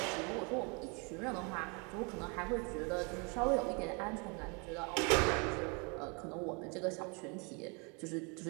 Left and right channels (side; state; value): left; quieter; 32.8 dB